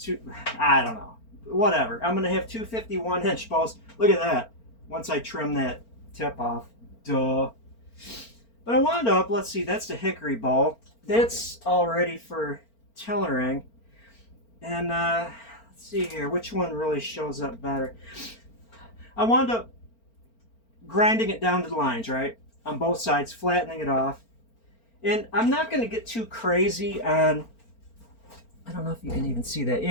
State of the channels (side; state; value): right; late; 4.4 ms